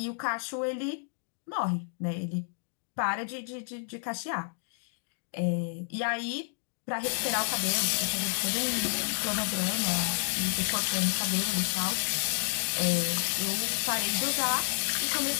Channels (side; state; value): right; silent; digital silence